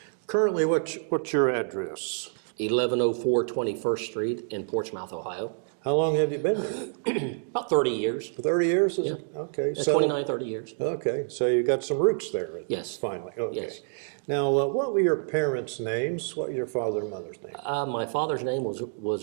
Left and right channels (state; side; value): silent; left; digital silence